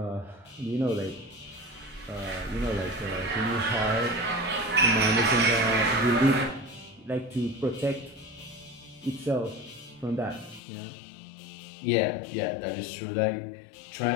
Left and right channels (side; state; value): right; drops out; at 10.6 s